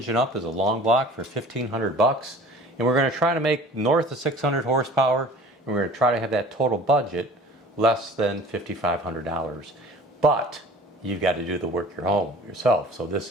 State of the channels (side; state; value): both; normal; correlation 0.46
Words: up as a long block for $1,500, and we're going to try to make north of 600 horsepower, and we're going to try to have that total budget less than $5,500. But you've got to do the work yourself. So